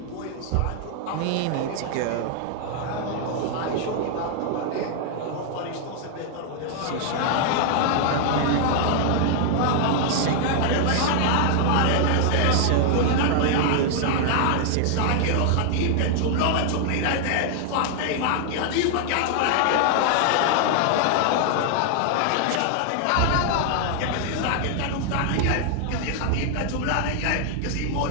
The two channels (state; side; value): different; both; correlation 0.00